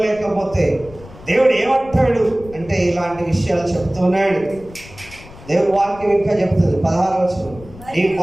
దేవుడు ఏమంటాడు అంటే ఇలాంటి విషయాలు చెప్తున్నాడు. దేవుడు వాక్యం ఇంకా చెప్తుంది 16వ వచనం, నీ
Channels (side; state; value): left; noise; rumble, 19 dB below the sound